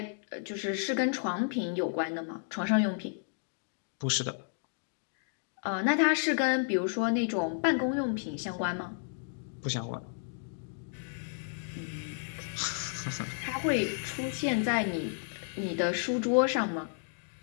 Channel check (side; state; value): right; silent; digital silence